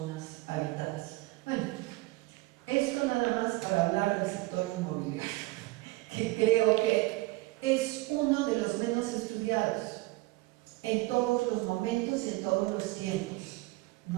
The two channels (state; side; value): quieter; left; 21.1 dB